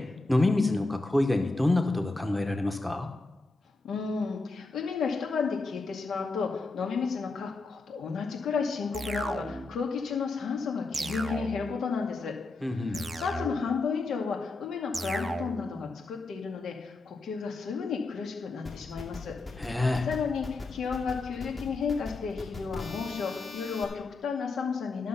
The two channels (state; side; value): quieter; right; 3.4 dB